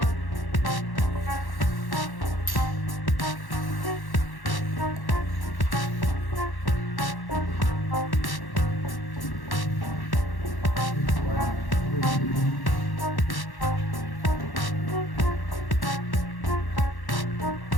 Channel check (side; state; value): right; late; 1.1 ms